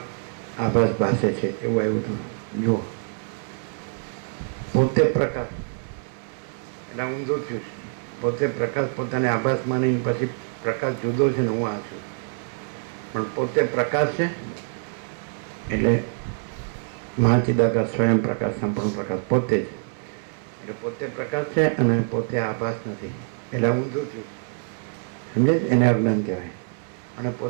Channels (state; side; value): silent; left; 59 dB below the other